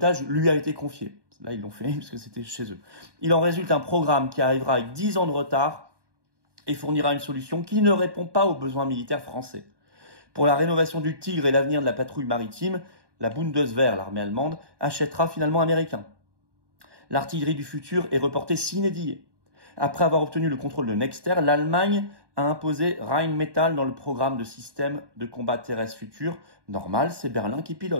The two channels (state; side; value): late; left; 1.1 ms